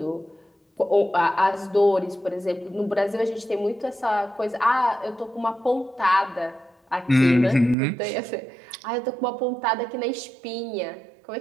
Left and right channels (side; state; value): left; drops out; at 7.8 s